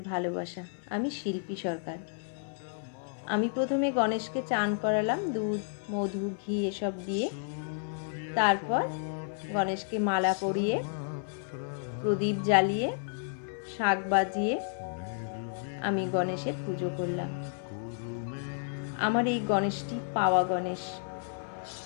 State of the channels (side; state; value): right; silent; 57 dB below the other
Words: ভালোবাসা। আমি শিল্পী সরকার। আমি প্রথমে গণেশকে চান করালাম দুধ, মধু, ঘি এসব দিয়ে। তারপর গণেশকে মালা পরিয়ে, প্রদীপ জ্বালিয়ে, শাঁখ বাজিয়ে আমি গণেশের পুজো করলাম। আমার এই গণেশটি পাওয়া গণেশ।